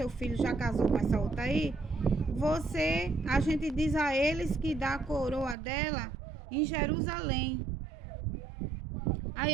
filho já casou com essa outra aí, a gente diz a eles que dá a coroa dela em Jerusalém. Aí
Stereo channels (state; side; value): drops out; left; at 5.6 s